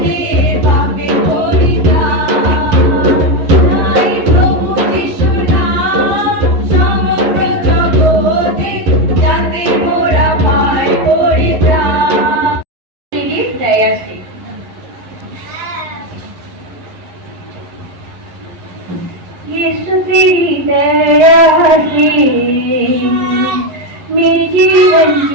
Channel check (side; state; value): left; late; 11 ms